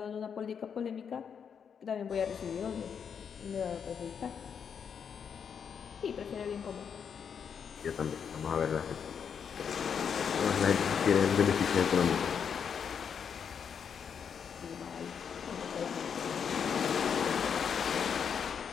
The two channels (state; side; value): quieter; right; 7.2 dB